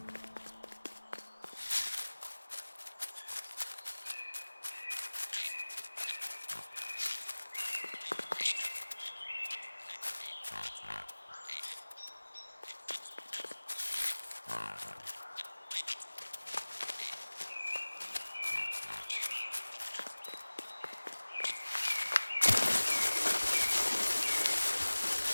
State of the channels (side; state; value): both; inverted; correlation -1.00